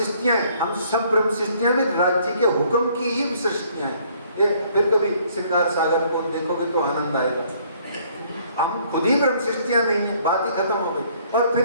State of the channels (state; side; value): inverted; both; correlation -0.62